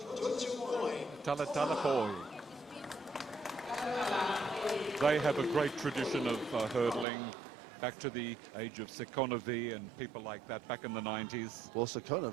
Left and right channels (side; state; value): left; drops out; at 7.1 s